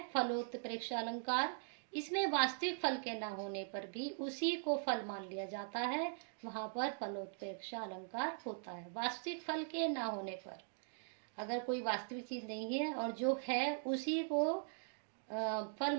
फलोत्प्रेक्षा अलंकार। इसमें वास्तविक फल के न होने पर भी उसी को फल मान लिया जाता है, वहां पर फलोत्प्रेक्षा अलंकार होता है। वास्तविक फल के न होने पर, अगर कोई वास्तविक चीज नहीं है और जो है उसी को फल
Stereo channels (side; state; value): left; silent; digital silence